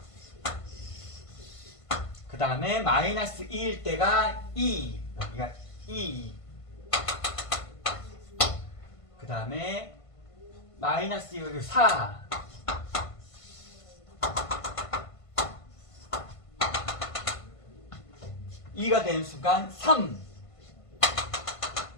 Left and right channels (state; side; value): late; right; 1.5 ms